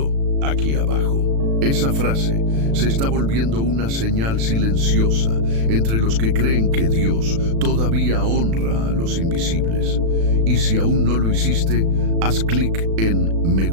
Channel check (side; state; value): left; late; 36 ms